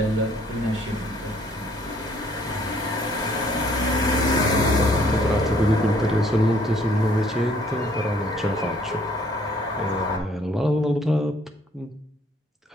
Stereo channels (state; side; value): normal; both; correlation 0.62